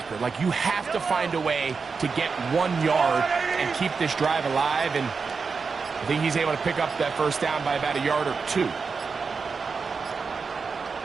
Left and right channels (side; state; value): left; quieter; 5.0 dB